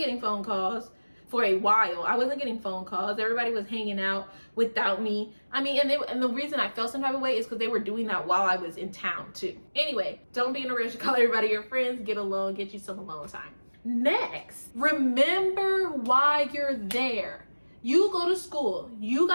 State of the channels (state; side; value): inverted; both; correlation -1.00